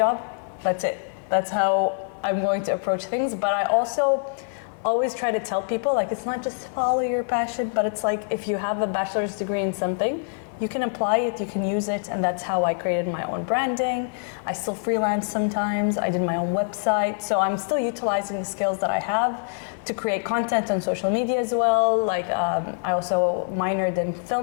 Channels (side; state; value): right; silent; 62 dB below the other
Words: that's it. That's how I'm going to approach things. But I also always try to tell people like it's not just follow your passion, but it's like if you have a bachelor's degree in something, you can apply it, you can use it, and that's how I created my own branding. I still freelance sometimes. I did my own website, so I'm still utilizing the skills that I have to create content on social media as well. Like I also minored in